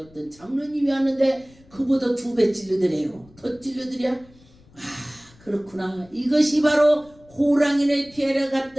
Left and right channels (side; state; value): left; noise; rumble, 27 dB below the sound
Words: 장로님이 왔는데 그보다 2배 찔러드래요. 더 찔러드랴? 그렇구나. 이것이 바로 호랑이를 피하러